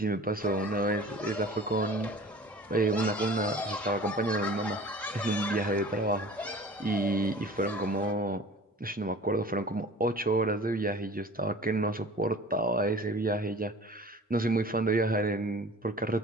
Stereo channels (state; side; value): normal; both; correlation 0.43